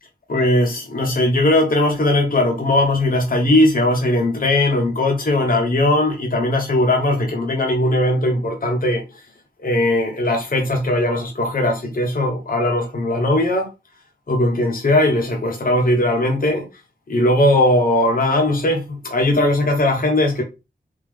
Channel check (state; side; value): normal; both; correlation 0.40